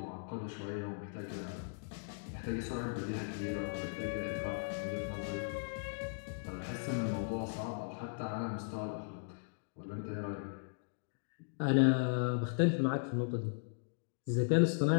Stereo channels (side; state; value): right; silent; digital silence